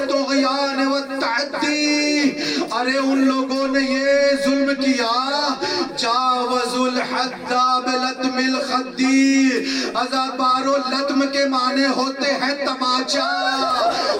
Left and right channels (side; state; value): both; identical; correlation 1.00